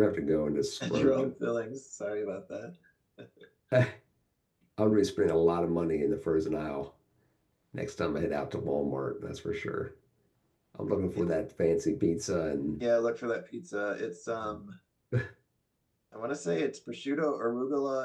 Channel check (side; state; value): both; identical; correlation 1.00